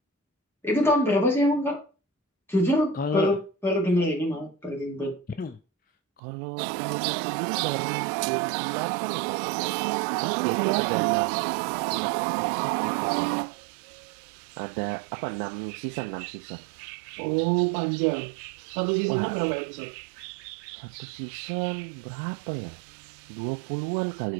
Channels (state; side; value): drops out; left; at 6.2 s